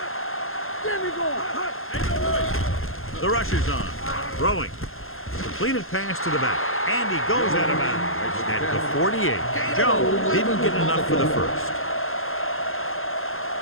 Get me going. The rush is on. Throwing. Completed pass to the back. And he goes out of bounds at the 48. Joe didn't get enough for the first.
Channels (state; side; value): late; right; 0.61 ms